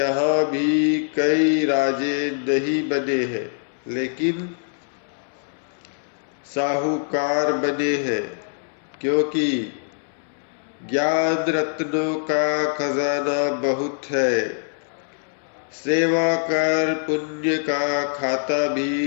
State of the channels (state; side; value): silent; right; 63 dB below the other